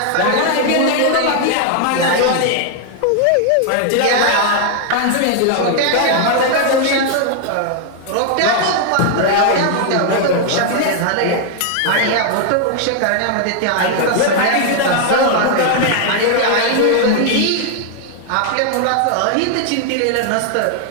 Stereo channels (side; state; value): both; different; correlation 0.00